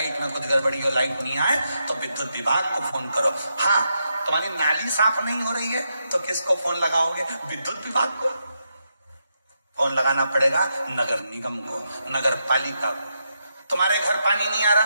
में कुछ गड़बड़ी हो, लाइट नहीं आए तो विद्युत विभाग को फोन करो। हाँ, तुम्हारी नाली साफ नहीं हो रही है तो किसको फोन लगाओगे? विद्युत विभाग को। फोन लगाना पड़ेगा नगर निगम को, नगर पालिका को। तुम्हारे घर पानी नहीं आ रहा,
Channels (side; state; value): both; inverted; correlation -0.83